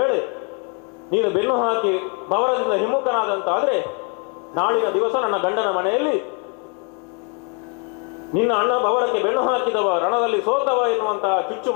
ನೀನು ಬೆನ್ನು ಹಾಕಿ ಬವರದಿಂದ ಹಿಮ್ಮುಖನಾದಂತಾದ್ರೆ ನಾಳಿನ ದಿವಸ ನನ್ನ ಗಂಡನ ಮನೆಯಲ್ಲಿ ನಿನ್ನ ಅಣ್ಣ ಬವರಕ್ಕೆ ಬೆನ್ನು ಹಾಕಿದವ, ರಣದಲ್ಲಿ ಸೋತವ ಎನ್ನುವಂತಹ ಚುಚ್ಚು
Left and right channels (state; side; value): quieter; right; 37.1 dB